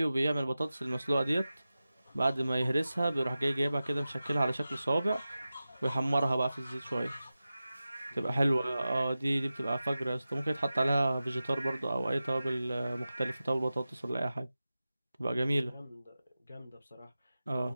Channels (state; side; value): inverted; both; correlation -0.94